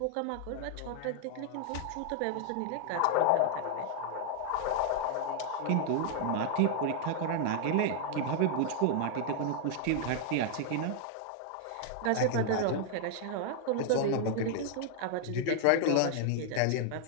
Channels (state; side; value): different; both; correlation 0.00